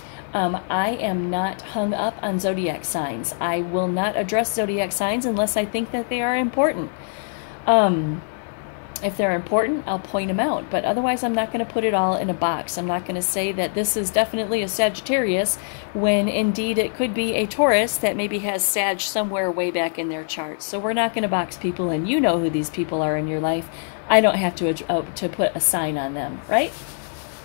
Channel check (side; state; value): right; silent; 59 dB below the other